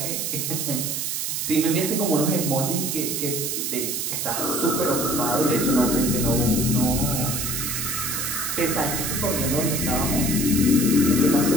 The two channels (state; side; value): noise; right; hiss, 1 dB below the sound